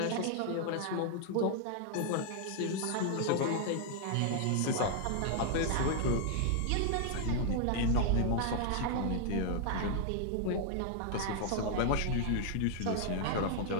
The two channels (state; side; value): different; both; correlation 0.00